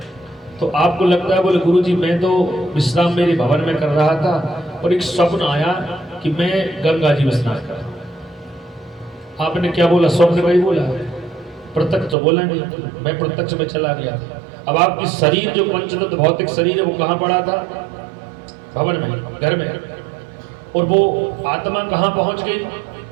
तो आपको लगता है बोले गुरुजी मैं तो विश्राम मेरे भवन में कर रहा था और एक स्वप्न आया कि मैं गंगा जी में स्नान कर रहा हूं। आपने क्या बोला? स्वप्न में ही बोला, प्रत्यक्ष तो बोला नहीं, मैं प्रत्यक्ष में चला गया था। अब आपकी शरीर जो पंचतत्व भौतिक शरीर है वो कहां पड़ा था? भवन में, घर में। और वो आत्मा कहां पहुंच गई?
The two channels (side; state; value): left; drops out; at 12.2 s